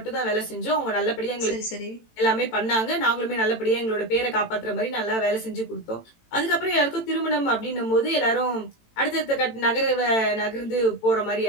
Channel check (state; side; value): late; right; 18 ms